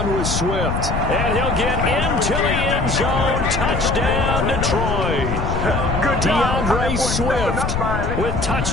with Swift, and he'll get into the end zone. Touchdown, Detroit. DeAndre Swift with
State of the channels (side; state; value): left; noise; rumble, 2 dB below the sound